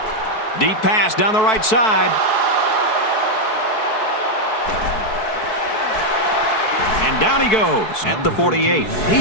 Deep pass down the right side. And down he goes at the 48. He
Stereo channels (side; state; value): right; late; 4.6 ms